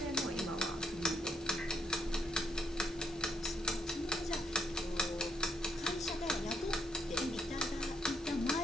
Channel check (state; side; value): normal; both; correlation 0.73